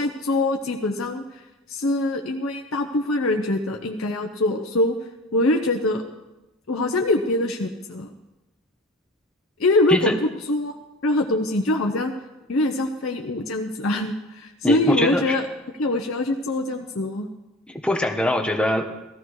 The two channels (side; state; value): both; normal; correlation 0.36